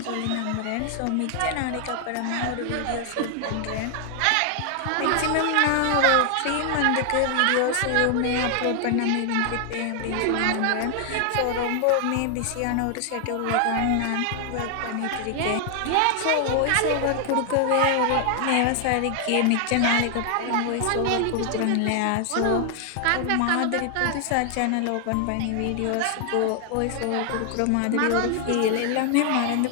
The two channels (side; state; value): both; different; correlation 0.00